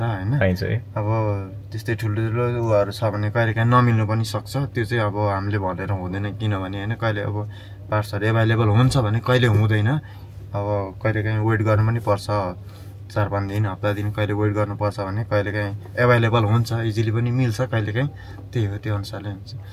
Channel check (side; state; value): both; identical; correlation 1.00